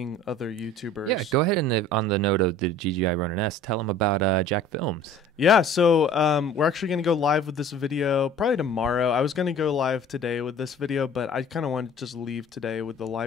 other YouTubers. Yeah, go ahead and on the note of the DJI Ronin S, tell them about Jack Films. Yeah, so we're actually going to go live with this video probably tomorrow. I was going to go live today with this video, but I kind of wanted to just leave today with the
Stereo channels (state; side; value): normal; both; correlation 0.47